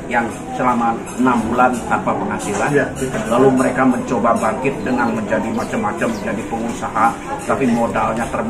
yang selama 6 bulan tanpa penghasilan, lalu mereka mencoba bangkit dengan menjadi macam-macam, menjadi pengusaha, tapi modalnya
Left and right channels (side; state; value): both; identical; correlation 1.00